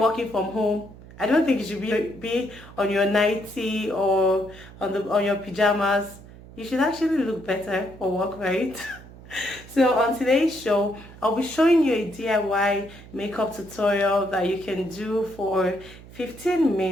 from home, I don't think you should be on your nightie or on your pajamas. You should actually look better for work, right? So on today's show, I'll be showing you a DIY makeup tutorial that you can do for 15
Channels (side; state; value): right; noise; hum, 19 dB below the sound